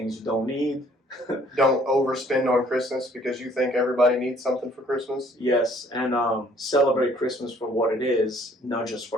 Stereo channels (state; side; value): normal; both; correlation 0.60